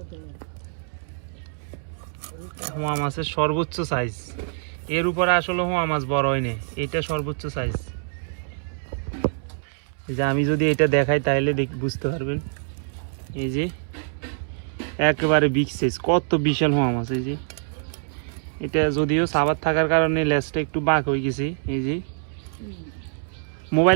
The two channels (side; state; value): left; silent; 62 dB below the other